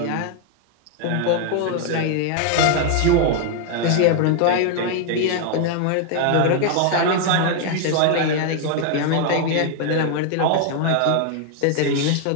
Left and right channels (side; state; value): both; different; correlation 0.00